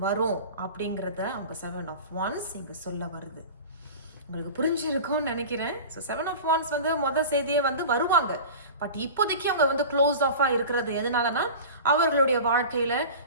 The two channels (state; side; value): inverted; both; correlation -0.34